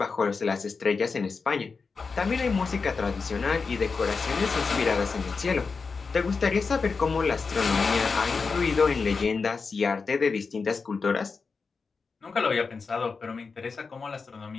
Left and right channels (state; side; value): quieter; right; 4.8 dB